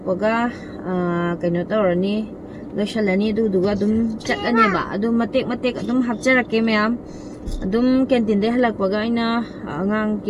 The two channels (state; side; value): identical; both; correlation 1.00